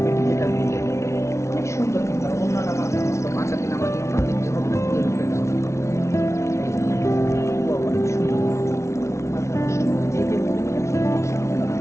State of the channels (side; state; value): right; late; 0.13 ms